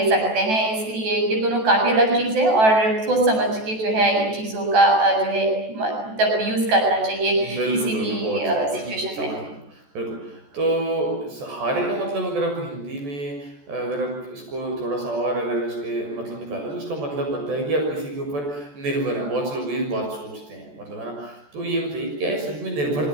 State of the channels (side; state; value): left; late; 14 ms